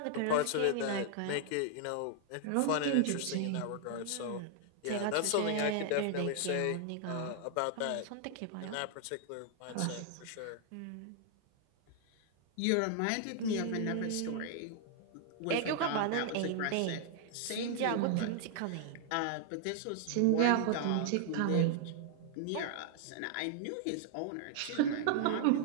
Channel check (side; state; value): both; different; correlation 0.00